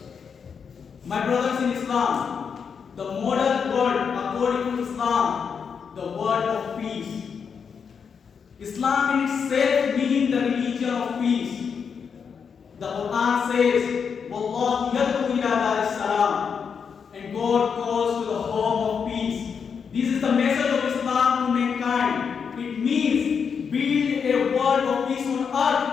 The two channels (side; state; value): right; quieter; 6.4 dB